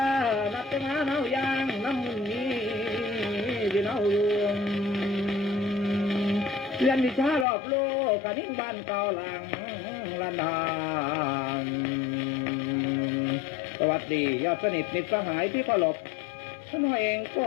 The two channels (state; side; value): drops out; right; at 7.5 s